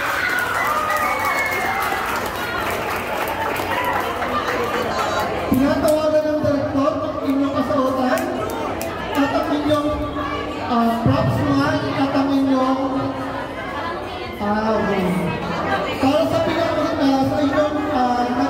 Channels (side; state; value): both; identical; correlation 1.00